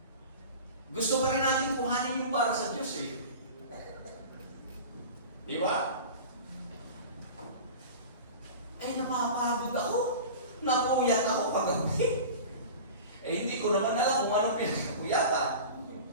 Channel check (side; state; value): both; inverted; correlation -0.35